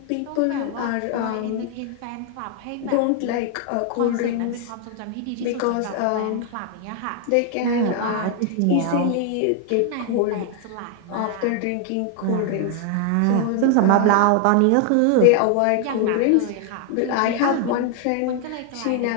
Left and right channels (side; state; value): both; different; correlation 0.00